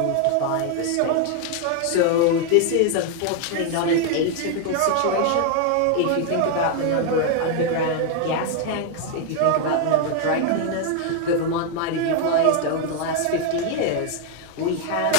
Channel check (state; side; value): different; both; correlation 0.00